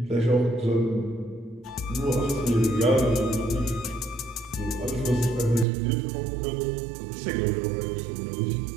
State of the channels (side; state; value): left; drops out; at 5.7 s